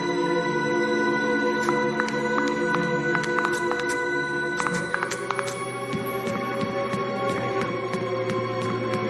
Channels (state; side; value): identical; both; correlation 1.00